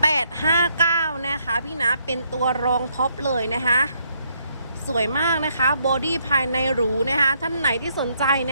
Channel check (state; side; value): inverted; both; correlation -0.73